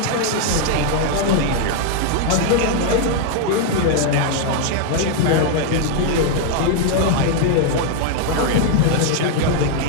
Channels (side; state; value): both; different; correlation 0.00